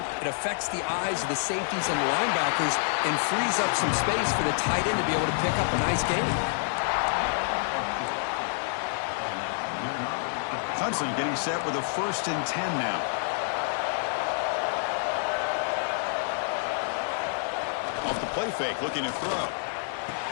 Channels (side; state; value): right; silent; digital silence